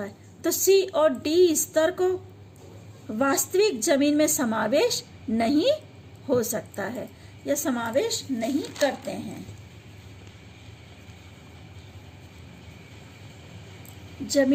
है। तो सी और डी स्तर को वास्तविक जमीन में समावेश नहीं हो सकता है या समावेश नहीं करते हैं।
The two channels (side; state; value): both; identical; correlation 1.00